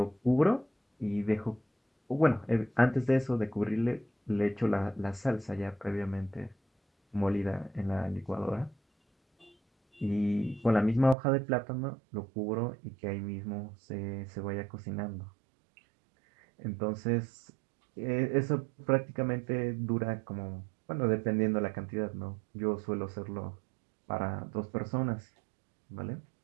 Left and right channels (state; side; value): drops out; left; at 11.2 s